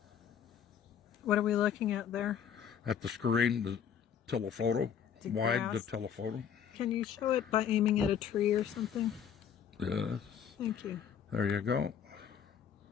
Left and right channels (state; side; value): quieter; right; 8.3 dB